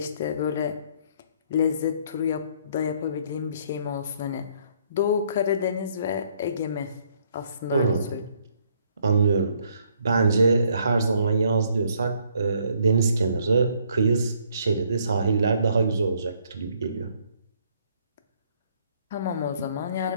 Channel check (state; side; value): inverted; both; correlation -0.66